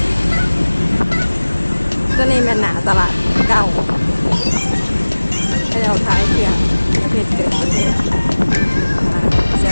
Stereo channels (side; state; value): both; inverted; correlation -1.00